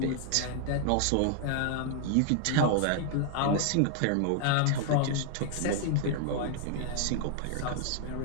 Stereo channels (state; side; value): different; both; correlation 0.00